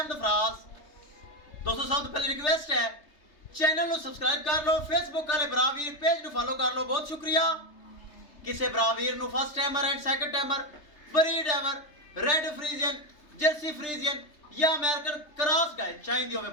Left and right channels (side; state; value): right; late; 3.3 ms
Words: ਫਰਾਜ਼। ਦੋਸਤੋ ਸਭ ਤੋਂ ਪਹਿਲੇ ਰਿਕਵੈਸਟ ਹੈ ਚੈਨਲ ਨੂੰ ਸਬਸਕ੍ਰਾਈਬ ਕਰ ਲਓ, ਫੇਸਬੁੱਕ ਵਾਲੇ ਭਰਾ ਵੀਰ ਪੇਜ ਨੂੰ ਫਾਲੋ ਕਰ ਲਓ। ਬਹੁਤ ਸ਼ੁਕਰੀਆ। ਕਿਸੇ ਭਰਾ ਵੀਰ ਨੂੰ first timer and second timer, breed ever, red Friesian, jersey Friesian या अमेरिकन क्रॉस गाय चाहिए होवे